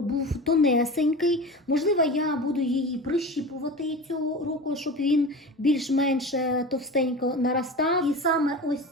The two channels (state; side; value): normal; both; correlation 0.32